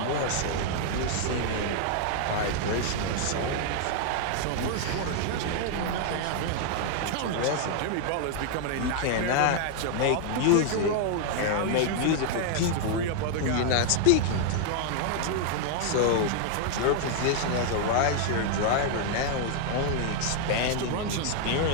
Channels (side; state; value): both; different; correlation 0.00